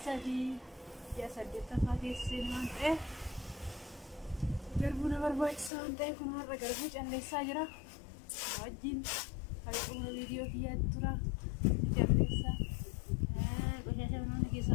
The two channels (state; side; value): drops out; right; at 5.7 s